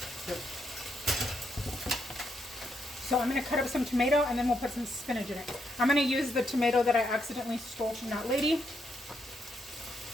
Yep. So I'm going to cut up some tomato and then we'll put some spinach in it. I'm going to use the tomato that I accidentally stole from that lady.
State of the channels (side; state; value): both; normal; correlation 0.78